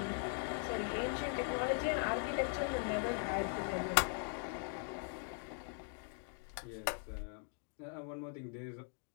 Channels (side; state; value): right; silent; 51 dB below the other